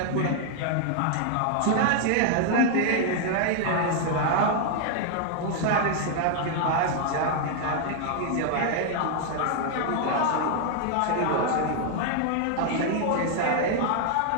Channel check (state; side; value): different; both; correlation 0.00